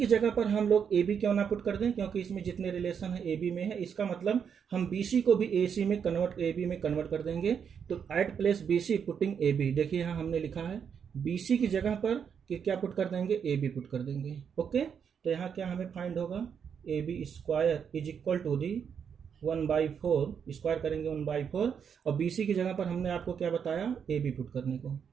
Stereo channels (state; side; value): quieter; left; 7.3 dB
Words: जगह पर हम लोग ए बी क्यों ना पुट कर दें, क्योंकि इसमें जितने रिलेशन है ए बी में है, इसका मतलब हम बी सी को भी ए सी में कन्वर्ट, ए बी में कन्वर्ट कर देंगे। तो at place B C putting A B, देखिए यहाँ हमने लिखा है बी सी की जगह पर कि क्या पुट कर देंगे, ए बी पुट कर देंगे। ओके, तो यहाँ क्या हमें फाइंड होगा, A B square is equal to the 1/4, square करेंगे 1/4 और बी सी की जगह पर हमने आपको क्या बताया, ए बी पुट करने को।